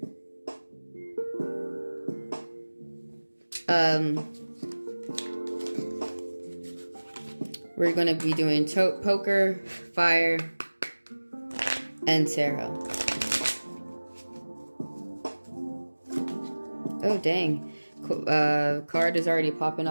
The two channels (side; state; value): both; inverted; correlation -1.00